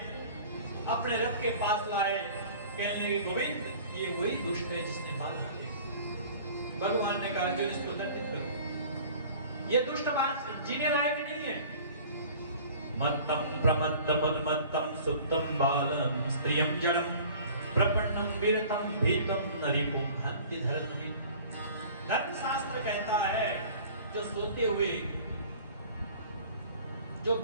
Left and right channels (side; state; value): both; inverted; correlation -0.46